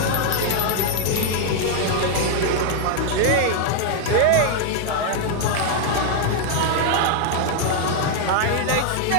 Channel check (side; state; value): both; different; correlation 0.00